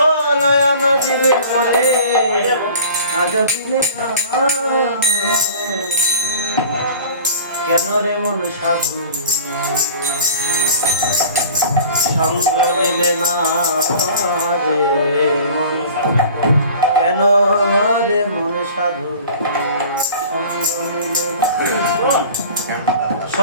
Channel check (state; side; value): inverted; both; correlation -0.43